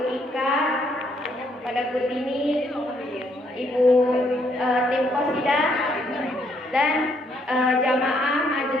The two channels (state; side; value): normal; both; correlation 0.71